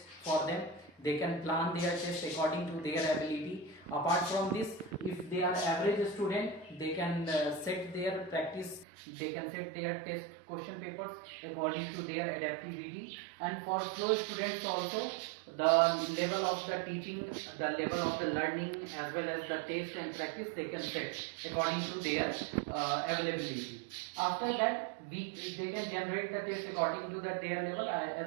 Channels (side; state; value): left; drops out; at 8.8 s